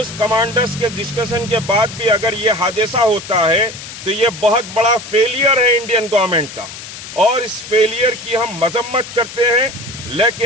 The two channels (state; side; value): noise; left; hiss, 12 dB below the sound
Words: کمانڈرز کے ڈسکشن کے بعد بھی اگر یہ حادثہ ہوتا ہے تو یہ بہت بڑا فیلئر ہے انڈین گورنمنٹ کا, اور اس فیلئر کی ہم مذمت کرتے ہیں.